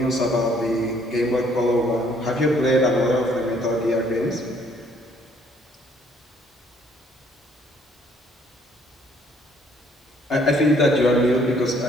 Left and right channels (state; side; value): normal; both; correlation 0.63